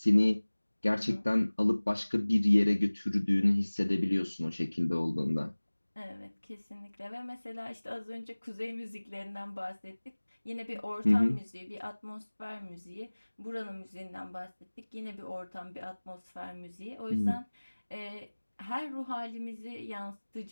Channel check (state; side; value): inverted; both; correlation -1.00